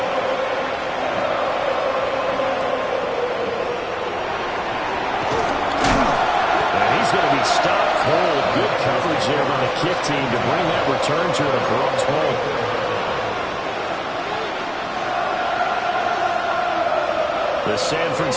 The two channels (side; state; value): both; identical; correlation 1.00